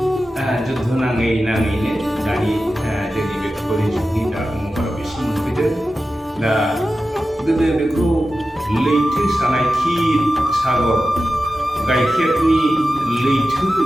जुद्ध नाङैनो दानि जोंनि बे कलिजुगनि दा महराव एसे मोनफैदों। दा गोदो बेखौ लैथो सानाय क्षीर सागर गाइखेरनि लैथो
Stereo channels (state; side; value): normal; both; correlation 0.93